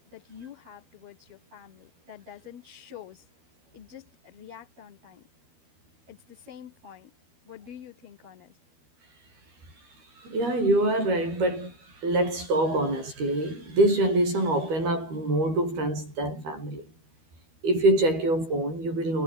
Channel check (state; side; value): late; left; 13 ms